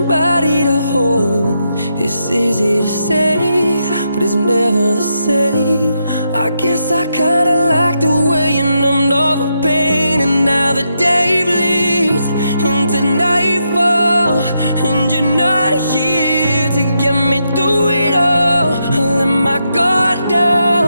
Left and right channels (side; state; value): both; inverted; correlation -0.82